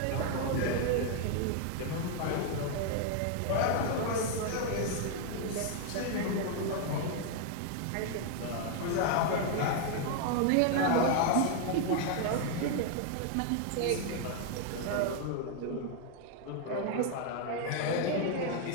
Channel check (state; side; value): different; both; correlation 0.00